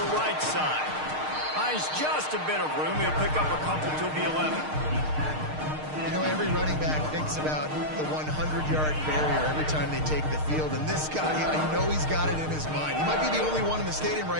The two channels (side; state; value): left; late; 6.5 ms